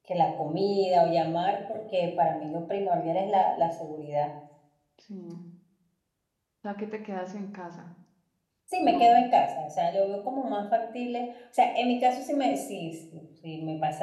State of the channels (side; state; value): both; identical; correlation 1.00